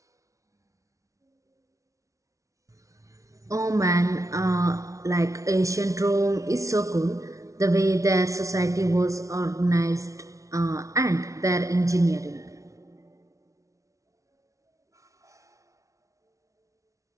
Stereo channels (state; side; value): late; left; 0.15 ms